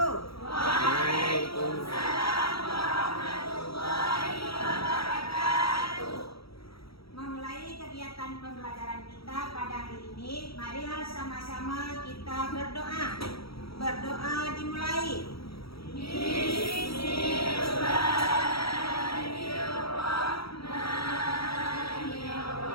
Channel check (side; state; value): right; late; 0.76 ms